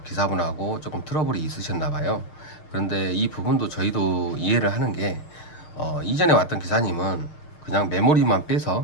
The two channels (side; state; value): right; late; 6.6 ms